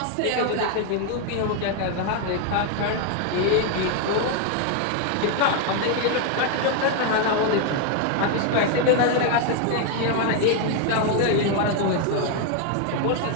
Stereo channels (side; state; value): both; different; correlation 0.01